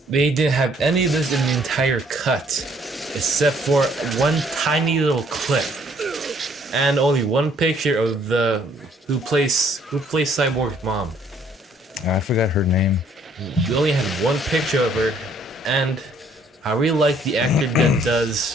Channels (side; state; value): both; normal; correlation 0.63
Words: They didn't have any of this in the entire cut, except for one tiny little clip, and only one picture of the who plays Cyborg's mom. I forgot her name. You only had one picture of her, and I really like the actor that does